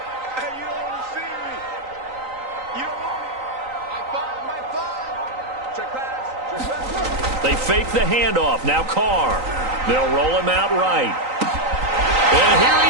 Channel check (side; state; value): left; late; 3.9 ms